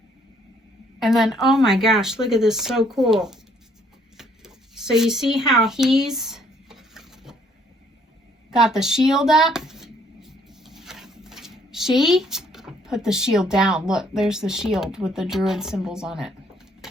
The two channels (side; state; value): both; normal; correlation 0.65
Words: And then, oh my gosh, look at this, so cool. So you see how he's got the shield up? She put the shield down. Look, there's the shield with the druid symbols on it.